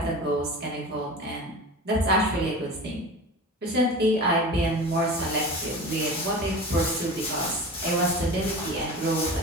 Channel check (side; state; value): both; normal; correlation 0.33